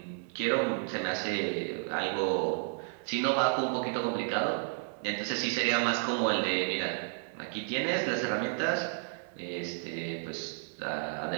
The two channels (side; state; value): left; silent; 56 dB below the other